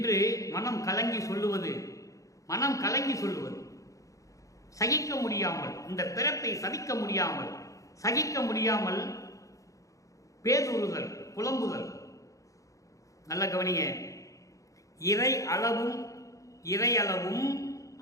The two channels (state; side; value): late; right; 0.16 ms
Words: மனம் கலங்கி சொல்லுவது, மனம் கலங்கி சொல்லுவது, சகிக்க முடியாமல், இந்த பிறப்பை சகிக்க முடியாமல் பேசுறுதல், புலம்புதல். நல்ல கவனிங்க. இறையளவும்